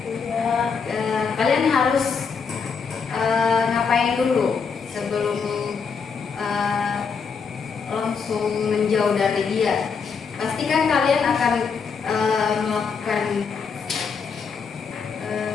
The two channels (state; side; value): quieter; right; 5.7 dB